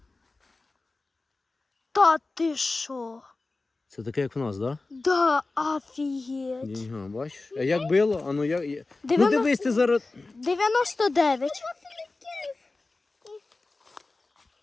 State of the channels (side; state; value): right; quieter; 3.5 dB